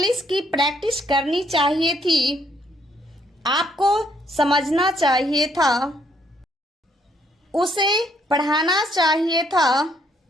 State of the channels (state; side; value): normal; both; correlation 0.70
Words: की प्रैक्टिस करनी चाहिए थी, आपको समझना चाहिए था, उसे पढ़ाना चाहिए था,